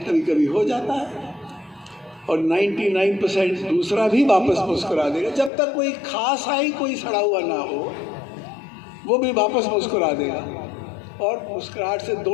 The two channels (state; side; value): drops out; right; at 5.5 s